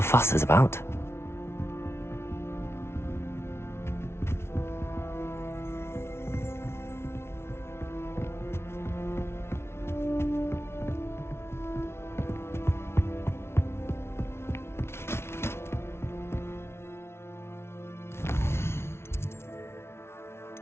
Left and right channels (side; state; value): right; late; 0.12 ms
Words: fuss is about.